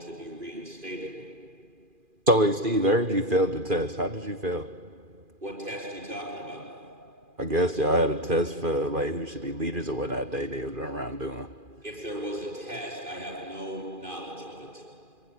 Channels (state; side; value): late; left; 2.4 ms